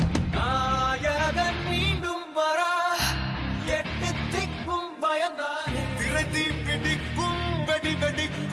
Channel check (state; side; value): identical; both; correlation 1.00